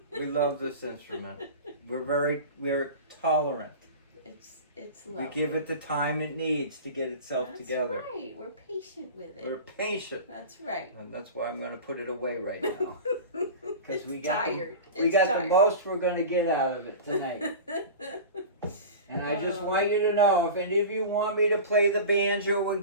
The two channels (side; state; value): both; inverted; correlation -0.32